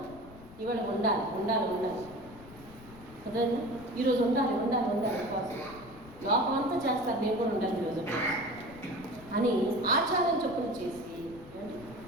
ఇవాళ ఉండాలి ఉండాలి ఉండాలి అర్థమైందా? ఈరోజు ఉండాలి ఉండాలి ఉండాలి ఉపవాసం. లోపం అంతా చేస్తారు, నేను కూడా ఉండాలి ఈరోజు అని ఆచారం చెప్పున చేసి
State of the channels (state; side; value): noise; left; rumble, 19 dB below the sound